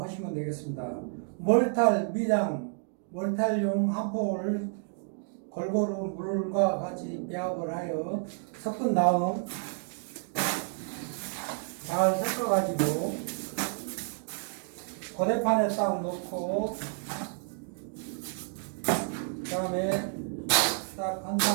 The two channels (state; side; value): silent; left; 58 dB below the other